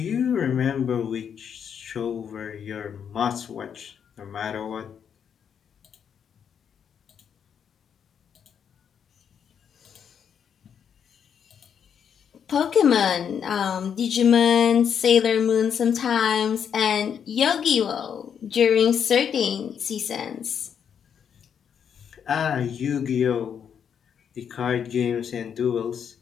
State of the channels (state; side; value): quieter; right; 7.8 dB